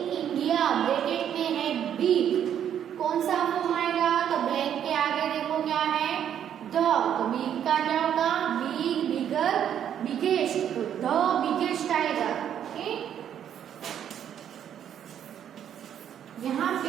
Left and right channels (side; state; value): left; quieter; 9.5 dB